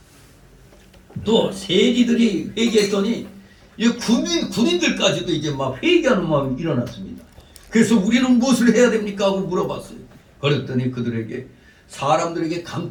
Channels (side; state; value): both; identical; correlation 1.00